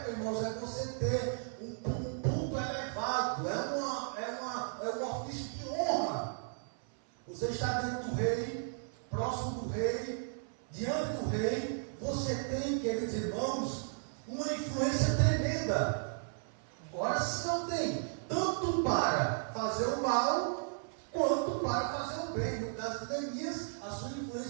irmãos, é você ter um ponto elevado, é um ofício de honra. Você está dentro do rei, próximo do rei, diante do rei, você tem, queridos irmãos, uma influência tremenda. Agora, se não tem, tanto para fazer o mal, quanto para fazer o bem. No caso de Neemias, a sua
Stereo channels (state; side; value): silent; left; 54 dB below the other